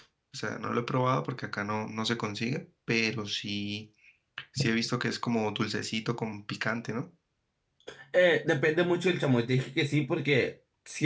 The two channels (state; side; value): identical; both; correlation 1.00